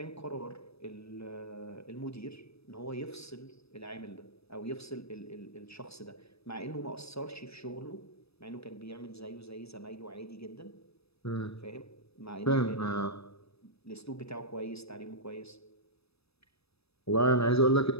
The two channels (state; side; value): late; right; 0.78 ms